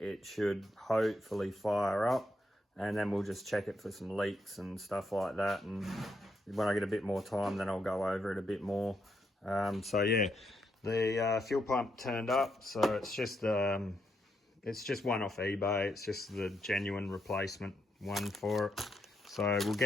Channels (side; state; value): both; normal; correlation 0.79